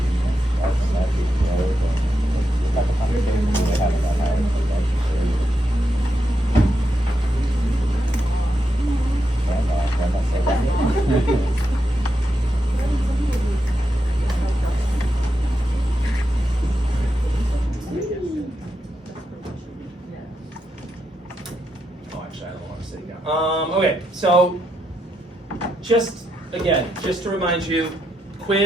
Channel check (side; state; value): both; normal; correlation 0.84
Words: actually, I don't want to sit down. Okay, so just to remind you,